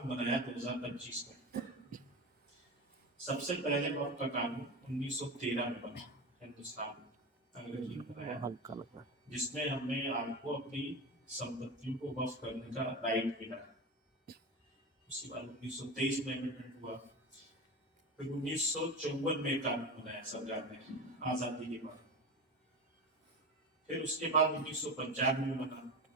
बनाया 2025 में। सबसे पहले वक्फ का कानून 1913 में बना हिंदुस्तान में, अंग्रेजी में बनाया, जिसमें हमें आपको अपनी संपत्तियों को वक्फ करने का राइट मिला। उसके बाद 1923 में अमेंडमेंट हुआ, फिर 1954 में कानून बनाया सरकार ने आजादी के बाद। फिर उसके बाद 1995 में बना,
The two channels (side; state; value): both; normal; correlation 0.25